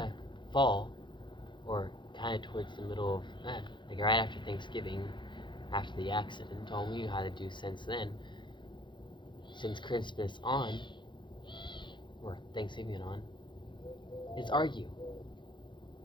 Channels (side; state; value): right; late; 0.23 ms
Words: fall, or kind of towards the middle of, like right after Thanksgiving, after the accident, all we knew how to do since then, since Christmas on, or Thanksgiving on, is argue.